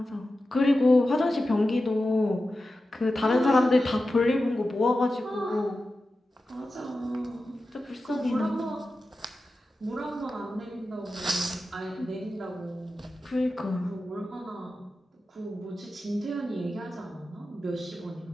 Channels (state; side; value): normal; both; correlation 0.93